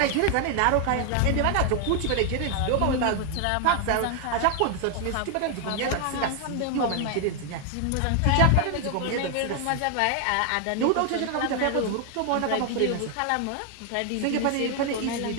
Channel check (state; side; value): different; both; correlation 0.00